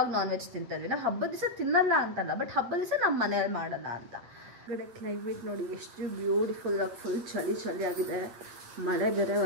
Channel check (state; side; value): late; left; 8.5 ms